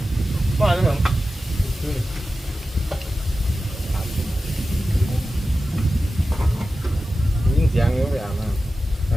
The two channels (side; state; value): both; normal; correlation 0.93